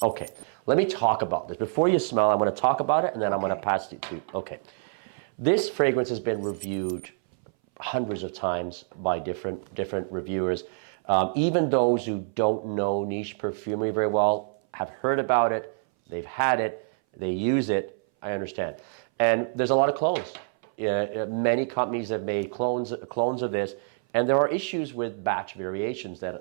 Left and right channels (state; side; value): silent; left; 59 dB below the other